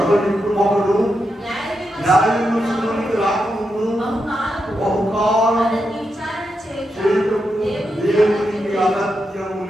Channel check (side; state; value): both; normal; correlation 0.85